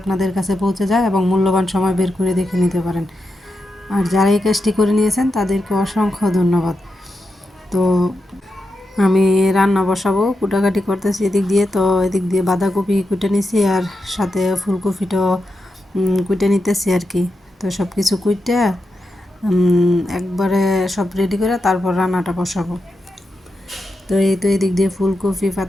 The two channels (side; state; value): both; normal; correlation 0.87